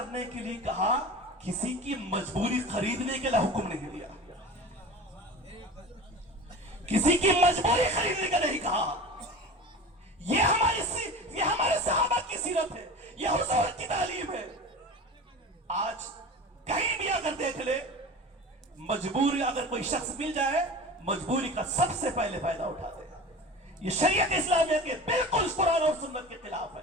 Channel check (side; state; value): both; normal; correlation 0.34